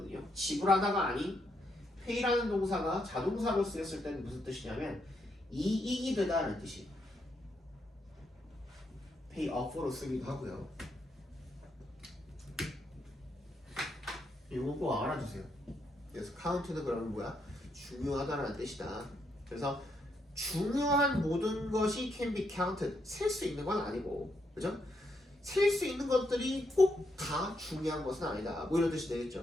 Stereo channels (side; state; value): both; normal; correlation 0.78